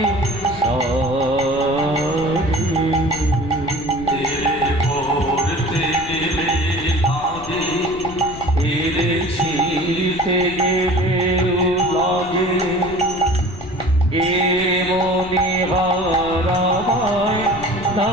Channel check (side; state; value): left; noise; rumble, 14 dB below the sound